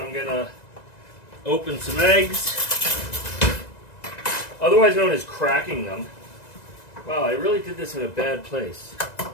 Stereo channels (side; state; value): right; late; 1.9 ms